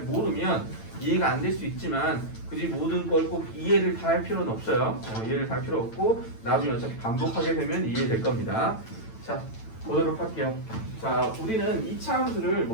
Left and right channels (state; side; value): late; right; 9.0 ms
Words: 모르면 이해가 안 될 수 있지만 굳이 모든 걸 꼭 이해를 다 할 필요는 없어요. 이해를 다 할 필요 없고 나중에 어차피 반복하게 되면 이해될 겁니다. 자, 보도록 할게요. 자, 우리는 2차 함수를